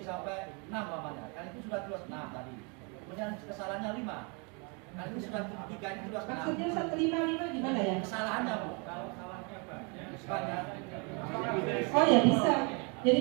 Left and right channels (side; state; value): left; quieter; 33.4 dB